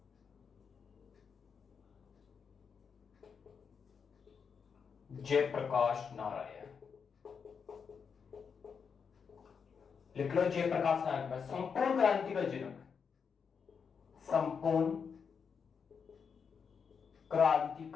जयप्रकाश नारायण लिख लो, जयप्रकाश नारायण। संपूर्ण क्रांति का जनक, संपूर्ण क्रांति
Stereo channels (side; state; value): right; quieter; 6.2 dB